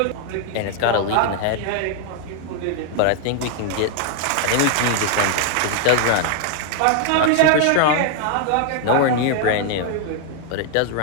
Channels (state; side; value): different; both; correlation 0.00